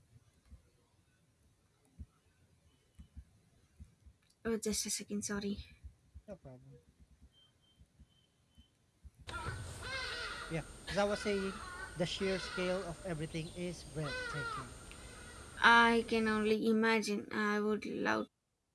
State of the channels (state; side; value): identical; both; correlation 1.00